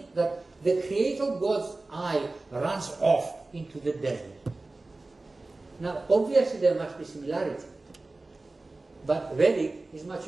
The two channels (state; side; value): quieter; left; 3.2 dB